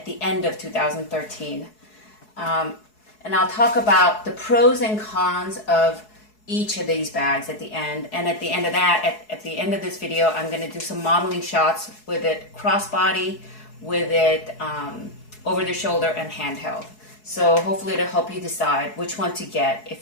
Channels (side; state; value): right; late; 4.7 ms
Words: the end of 2013. And I'll talk about the pros and cons of each of these bags at the end. And at the end of that, at the end of this video, I'm going to do some modeling shots with it crossbody, with it over the shoulder and handheld. So hopefully it'll help you decide which one to get